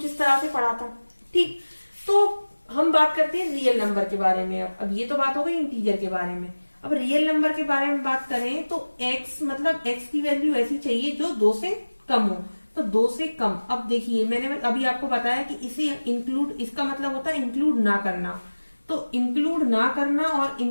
इस तरह से पढ़ा था। ठीक, तो हम बात करते हैं रियल नंबर के बारे में। अब ये तो बात हो गई इंटीजर के बारे में। अब रियल नंबर के बारे में बात करें तो x मतलब x की वैल्यू ऐसी चाहिए जो 2 से कम हो। तो 2 से कम, अब देखिए मैंने अभी आपको बताया कि इसे इंक्लूड, इसका मतलब होता है इंक्लूड ना करना। तो इंक्लूड ना करना और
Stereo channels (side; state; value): both; inverted; correlation -1.00